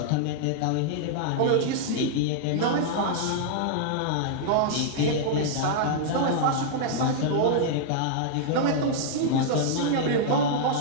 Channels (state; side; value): different; both; correlation -0.01